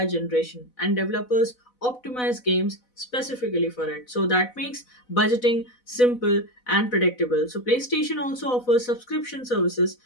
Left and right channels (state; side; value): late; right; 4.0 ms